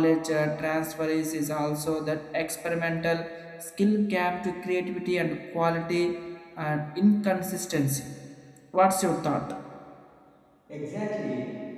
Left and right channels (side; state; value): both; identical; correlation 1.00